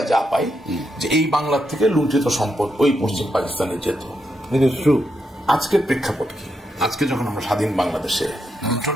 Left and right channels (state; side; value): normal; both; correlation 0.82